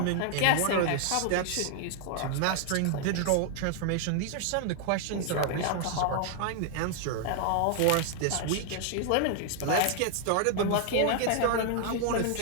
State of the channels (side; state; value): both; different; correlation 0.00